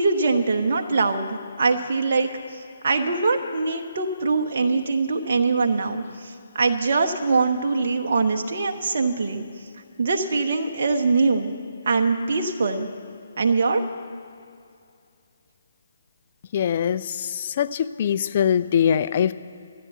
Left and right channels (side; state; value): both; inverted; correlation -0.78